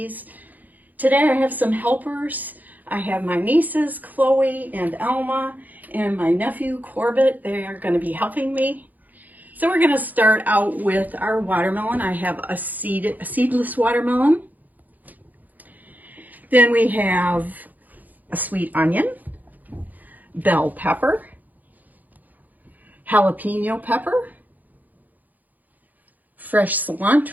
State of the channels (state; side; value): late; left; 0.082 ms